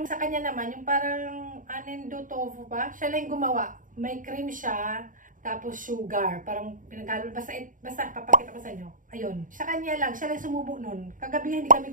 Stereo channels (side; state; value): left; late; 0.38 ms